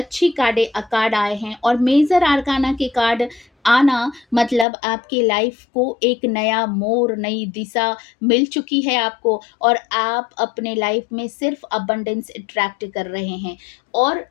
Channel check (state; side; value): drops out; right; at 4.7 s